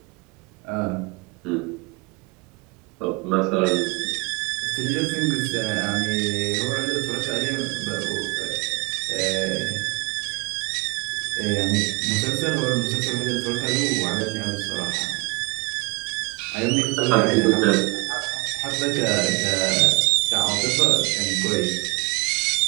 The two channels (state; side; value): quieter; left; 27.6 dB